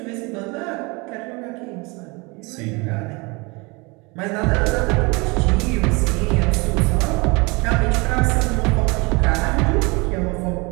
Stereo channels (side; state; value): left; quieter; 27.1 dB